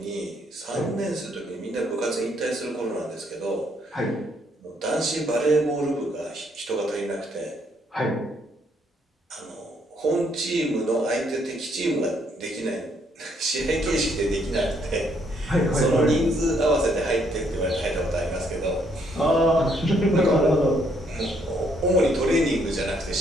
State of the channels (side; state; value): both; normal; correlation 0.70